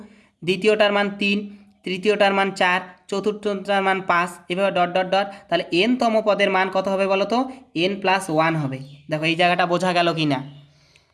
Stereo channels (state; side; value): identical; both; correlation 1.00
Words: দ্বিতীয়টার মান 3, তৃতীয়টার মান 4, চতুর্থটার মান 5, এভাবে ডট ডট ডট। তাহলে N-তম পদের মান কত হবে বলো তো, N+1 হবে। দেখো এই জায়গাটা বোঝা গেল কি না?